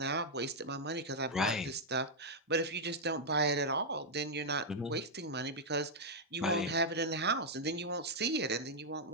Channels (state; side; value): normal; both; correlation -0.04